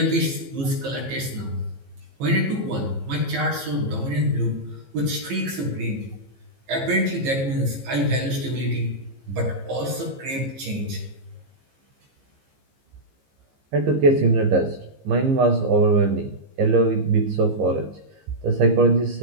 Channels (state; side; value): late; left; 15 ms